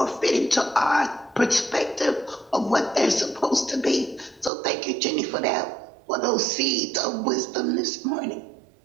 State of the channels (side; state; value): left; drops out; at 4.5 s